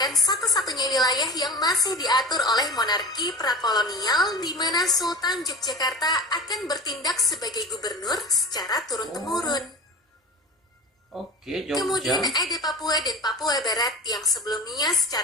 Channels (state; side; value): normal; both; correlation 0.34